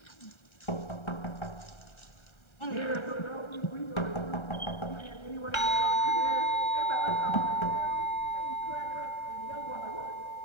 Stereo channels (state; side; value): late; right; 1.3 ms